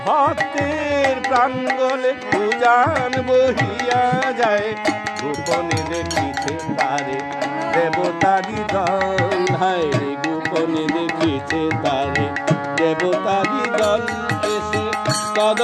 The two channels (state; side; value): identical; both; correlation 1.00